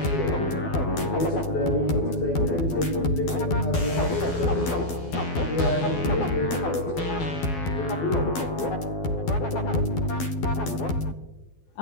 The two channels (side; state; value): right; late; 12 ms